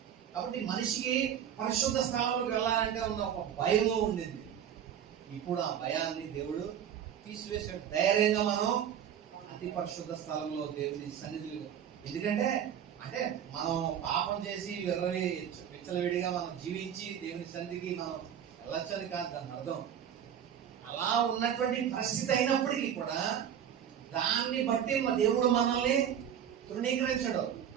కాబట్టి మనిషికి పరిశుద్ధ స్థలంలోకి వెళ్ళాలంటే ఉన్న ఒక భయము ఉండింది. ఇప్పుడు ఆ భయాన్ని దేవుడు తీసివేసాడు. ధైర్యంగా మనం అతి పరిశుద్ధ స్థలంలో దేవుని సన్నిధిలో, ఎందుకంటే అంటే మనం పాపం చేసి విచ్చలవిడిగా మనం జీవించి దేవుని సన్నిధికి మనం వెళ్ళొచ్చని కాదు దాని అర్థం. అలా ఉన్నటువంటి పరిస్థితి అయినప్పటికీ కూడా దాన్ని బట్టి దేవుడు మనల్ని తృణీకరించడు.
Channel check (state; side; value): quieter; left; 9.1 dB